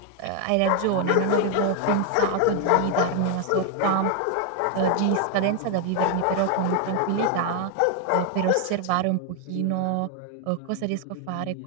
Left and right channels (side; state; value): both; different; correlation 0.01